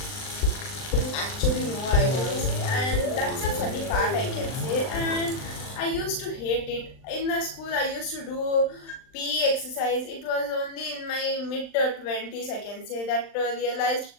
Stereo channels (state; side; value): late; right; 39 ms